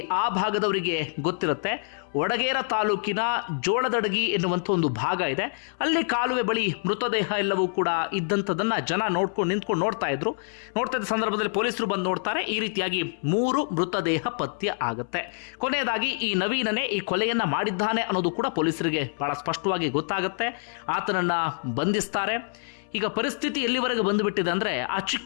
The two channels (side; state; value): right; silent; 61 dB below the other